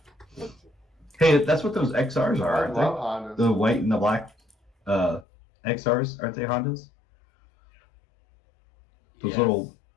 Fight you. Hey, that's what those XRs are, I aren't love they? Hondas. The white and the black XRs, aren't they Hondas? Those Yes. little,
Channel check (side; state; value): right; drops out; at 5.2 s